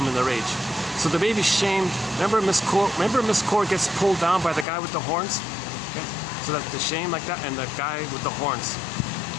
and the rage. So the baby's shamed. Remember Miss Cord gets pulled down by the guy with the horns? Okay? So that the shame like that, and the guy with the horns,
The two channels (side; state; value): right; drops out; at 4.7 s